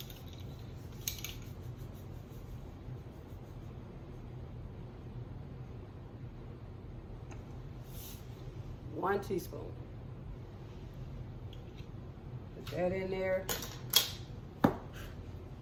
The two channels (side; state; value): both; identical; correlation 1.00